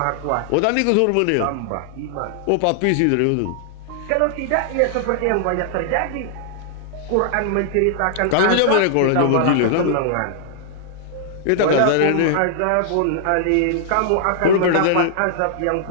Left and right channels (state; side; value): different; both; correlation -0.01